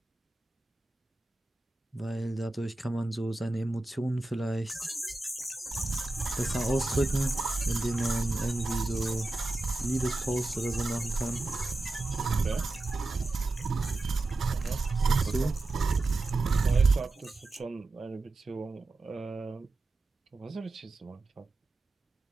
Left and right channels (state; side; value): quieter; left; 3.1 dB